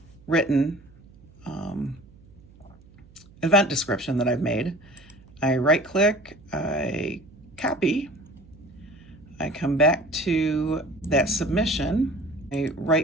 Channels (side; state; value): right; noise; hum, 25 dB below the sound